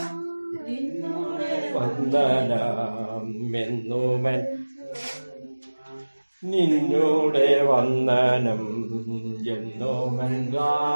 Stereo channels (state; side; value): inverted; both; correlation -1.00